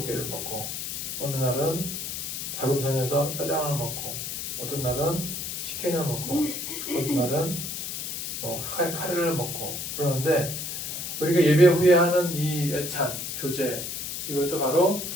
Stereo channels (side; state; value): left; noise; hiss, 5 dB below the sound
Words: 먹고, 어느 날은 자금성에서 짜장을 먹고, 어떤 날은 치킨을 먹고, 어떤 날은 카레를 먹고 그러는데, 우리가 예배 후에 하는 이 애찬, 교제, 이것도 바로